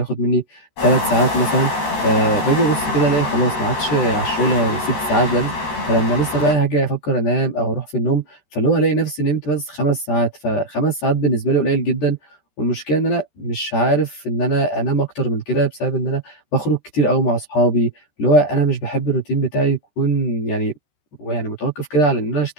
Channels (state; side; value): late; right; 14 ms